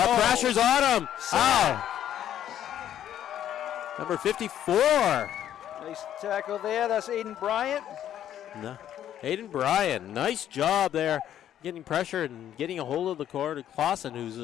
on him. Oh. Number 54. Nice tackle there. That's Aiden Bryant. No. Aiden Bryant. Nice job there. Getting pressure and getting a hold of the quarter. Clausen, who's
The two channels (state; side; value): quieter; right; 10.9 dB